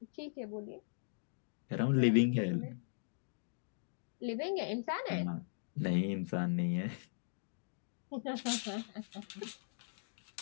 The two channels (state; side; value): silent; right; digital silence